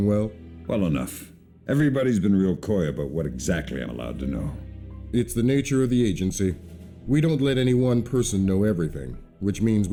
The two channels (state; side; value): identical; both; correlation 1.00